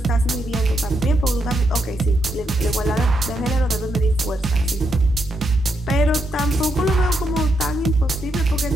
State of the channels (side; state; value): both; normal; correlation 0.80